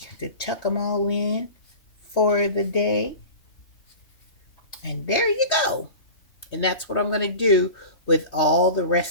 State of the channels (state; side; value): late; right; 3.2 ms